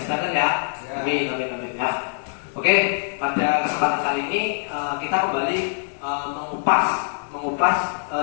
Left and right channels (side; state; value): right; silent; 63 dB below the other